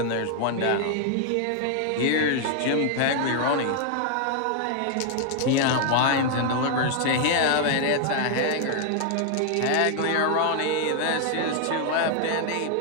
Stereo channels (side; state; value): both; different; correlation 0.00